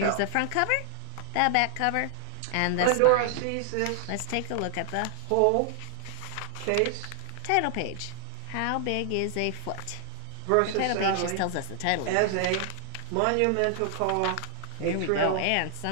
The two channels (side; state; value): both; different; correlation 0.00